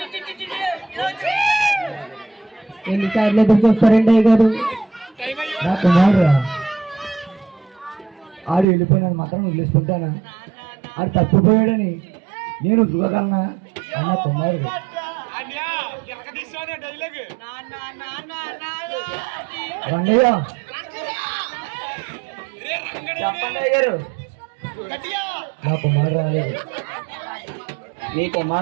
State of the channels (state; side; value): drops out; left; at 8.7 s